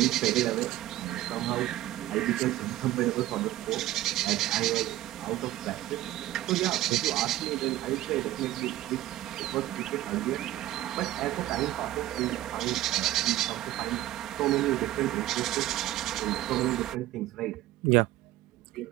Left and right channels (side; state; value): left; quieter; 15.0 dB